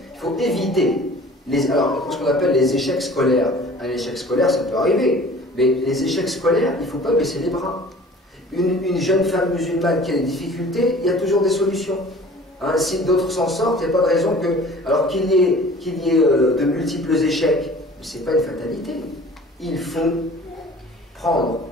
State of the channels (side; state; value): both; normal; correlation 0.46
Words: Il faut éviter ce qu'on appelle les échecs scolaires. Un échec scolaire, ça peut arriver, mais les échecs scolaires, il ne faut pas baisser les bras. Une jeune femme musulmane qui a des difficultés, il y a toujours des solutions. Hein, si d'autres s'en sortent, il n'y a pas de raison que, alors qu'il y ait de multiples échecs, ce n'est pas une fatalité. Il faut prendre